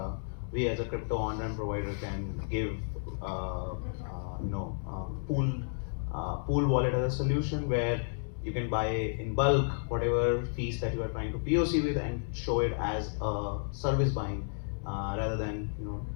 we as a crypto on-ramp provider can give pool wallet as a solution where you can buy in bulk whatever fees that you are trying to POC with and show it as a service buying rather than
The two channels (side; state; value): right; silent; 56 dB below the other